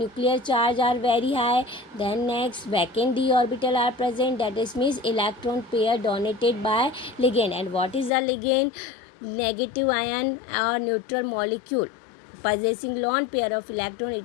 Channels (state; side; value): drops out; right; at 8.1 s